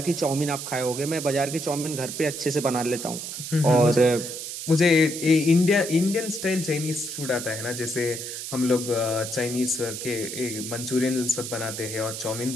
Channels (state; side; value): noise; right; hiss, 7 dB below the sound